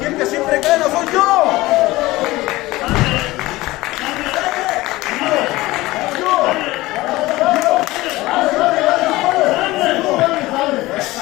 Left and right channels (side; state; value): right; quieter; 19.0 dB